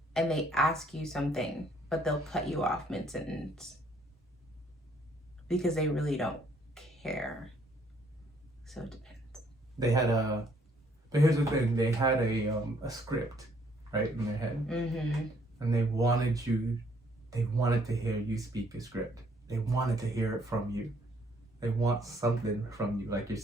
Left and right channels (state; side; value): normal; both; correlation 0.65